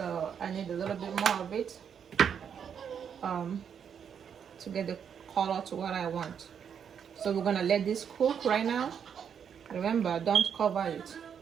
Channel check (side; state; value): left; quieter; 7.7 dB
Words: I need a little bit more of it to get the color to what I want. So we're gonna let this cook right now. Remember, don't cover it.